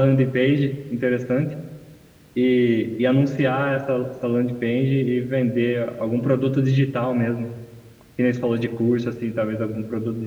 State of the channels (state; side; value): identical; both; correlation 1.00